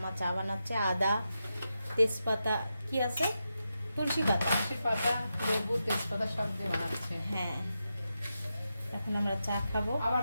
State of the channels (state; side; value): inverted; both; correlation -0.88